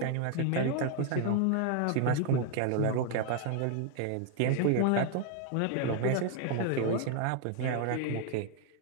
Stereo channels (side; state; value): both; different; correlation 0.00